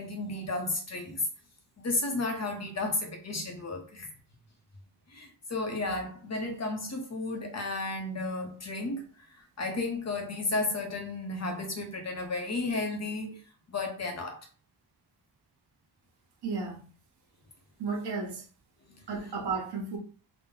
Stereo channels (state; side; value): normal; both; correlation 0.03